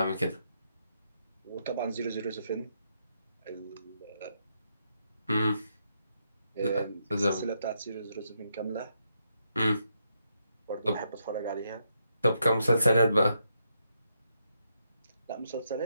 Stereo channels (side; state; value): both; inverted; correlation -0.80